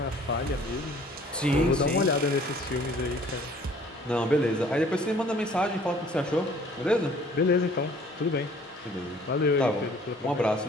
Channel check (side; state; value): both; normal; correlation 0.54